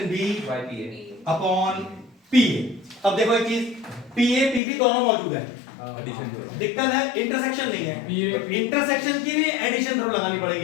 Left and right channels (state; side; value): drops out; right; at 4.6 s